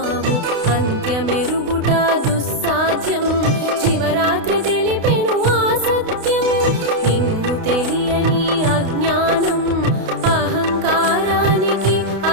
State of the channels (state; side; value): late; left; 32 ms